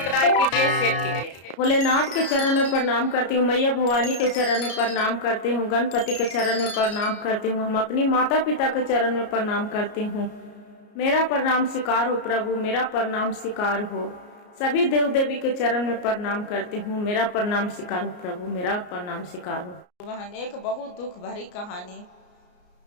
कीजिए, शेयर कीजिए। भोलेनाथ के चरण में प्रणाम करती हूँ, मैया भवानी के चरण में प्रणाम करती हूँ, गणपति के चरण में प्रणाम करती हूँ, हम अपनी माता पिता के चरण में प्रणाम करती हूँ। मेरा प्रणाम स्वीकार हो प्रभु, मेरा प्रणाम स्वीकार हो। सभी देव देवी के चरण में प्रणाम करती हूँ, मेरा प्रणाम स्वीकार हो प्रभु, मेरा प्रणाम स्वीकार हो। बहन, एक बहुत दुख भरी कहानी।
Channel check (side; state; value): right; late; 33 ms